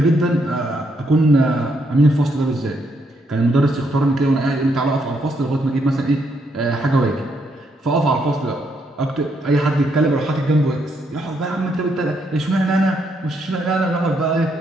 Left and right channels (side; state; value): both; normal; correlation 0.75